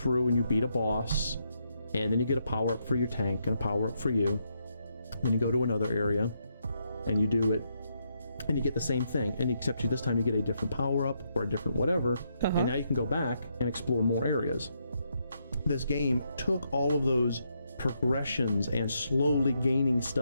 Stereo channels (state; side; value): inverted; both; correlation -0.78